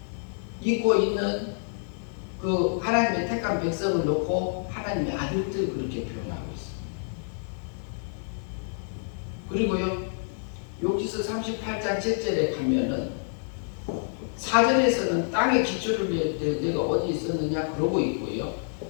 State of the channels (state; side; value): silent; right; 59 dB below the other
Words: 입고 있는 그 하나님의 택한 백성을 놓고 하나님의 아들들 그렇게 표현하고 있습니다. 그리고요, 욥기서 38장 7절에 가면은 4절에서는 땅의 기초를 내가 어디 있었느냐 그러고 있고요.